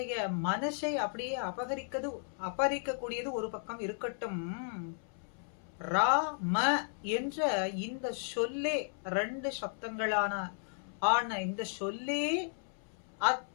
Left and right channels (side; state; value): right; silent; 55 dB below the other